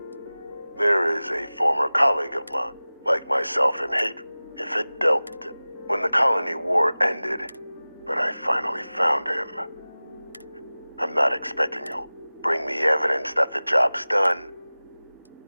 There is a former colleague of mine, like myself in hatred, if it dealt when the colony war ended, but I finally found him. I'm not expecting he'll bring me evidence that the job's done.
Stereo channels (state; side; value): inverted; both; correlation -0.98